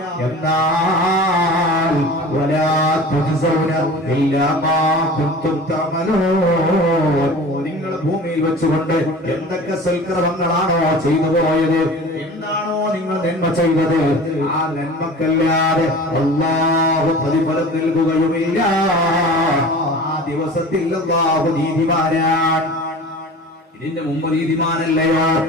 എന്നാൽ നിങ്ങൾ ഭൂമിയിൽ വെച്ചുകൊണ്ട് എന്തൊക്കെ സൽക്കർമ്മങ്ങളാണോ ചെയ്തു പോയത്, എന്താണോ നിങ്ങൾ നന്മ ചെയ്തത്, ആ നന്മക്കല്ലാതെ അല്ലാഹു പ്രതിഫലം നൽകുകയുമില്ല. ആ ദിവസത്തിൽ അല്ലാഹു നീതിമാനാണ്. ഇതിന്റെ മുമ്പ് നീതിമാനല്ലയോ?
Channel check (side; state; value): both; normal; correlation 0.39